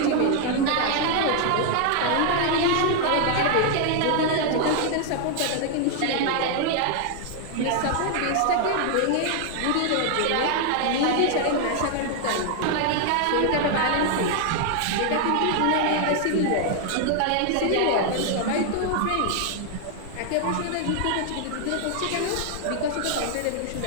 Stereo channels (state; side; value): different; both; correlation 0.00